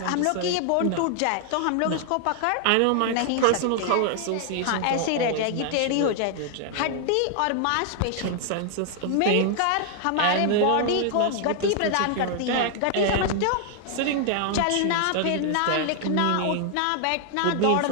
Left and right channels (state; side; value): different; both; correlation 0.00